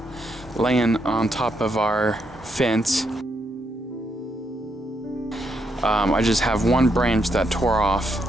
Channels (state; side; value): normal; both; correlation 0.78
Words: laying on top of our fence. I just have one branch that tore off